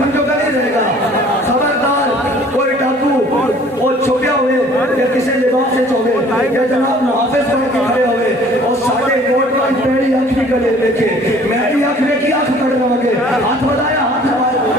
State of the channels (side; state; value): both; normal; correlation 0.53